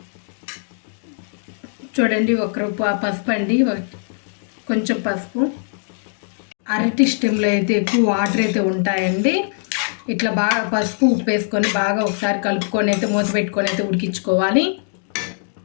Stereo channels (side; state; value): right; silent; digital silence